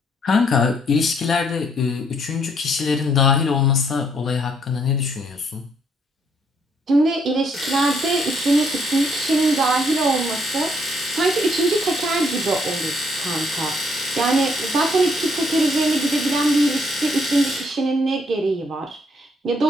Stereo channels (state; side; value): normal; both; correlation 0.70